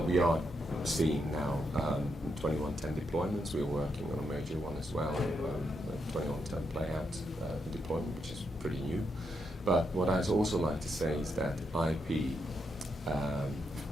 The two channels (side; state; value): both; normal; correlation 0.81